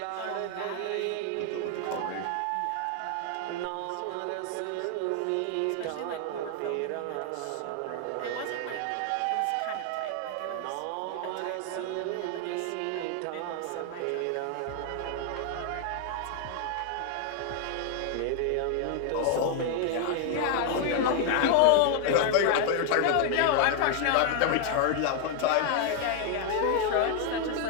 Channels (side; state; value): both; different; correlation 0.00